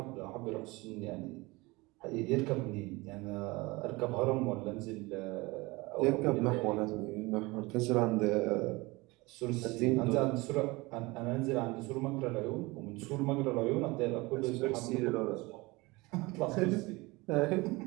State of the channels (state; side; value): quieter; left; 23.2 dB